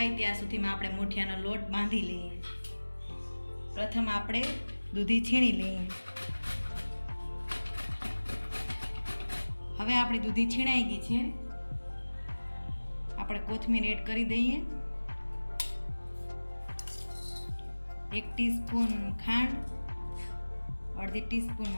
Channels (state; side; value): inverted; both; correlation -1.00